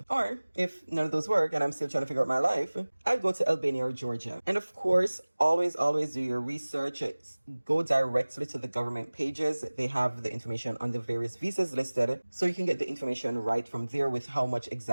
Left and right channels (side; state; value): both; inverted; correlation -1.00